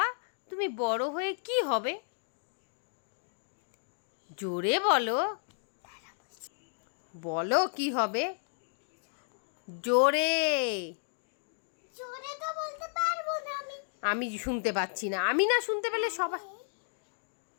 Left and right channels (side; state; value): right; silent; digital silence